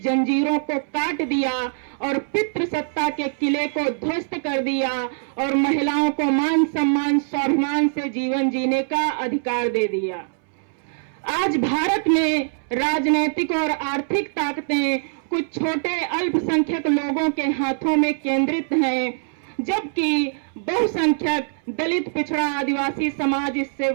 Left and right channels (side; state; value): left; silent; 64 dB below the other